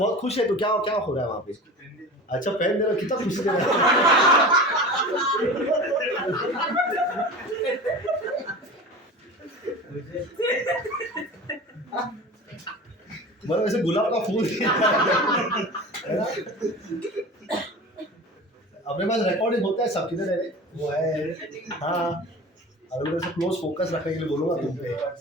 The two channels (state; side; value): normal; both; correlation 0.34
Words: खुश है तो क्या हो रहा है वहां पे? अच्छा, पेन दे रहा, कितना खुशी दे रहा मतलब ऐसे गुलाब का फूल है ना? अपने पास रिकॉर्डिंग होता है सब, किधर है वो है? हाँ, अगर मैं क्लोज फोकस रखने के लिए बोलूंगा तुम पे,